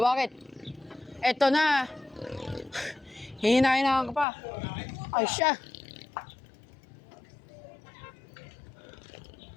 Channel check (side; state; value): right; drops out; at 4.2 s